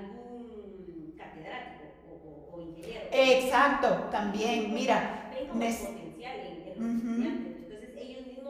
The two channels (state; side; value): identical; both; correlation 1.00